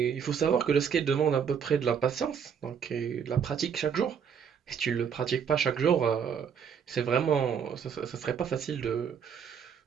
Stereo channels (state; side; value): quieter; left; 7.3 dB